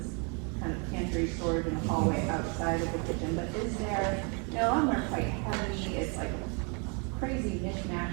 kind of pantry storage in a hallway outside of the kitchen. But is there, you know, some are quite heavy, it's like a crazy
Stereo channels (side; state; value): left; quieter; 35.3 dB